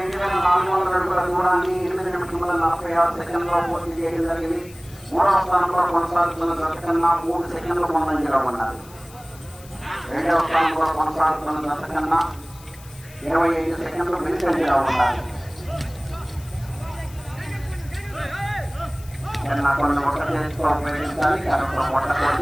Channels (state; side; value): noise; left; hiss, 22 dB below the sound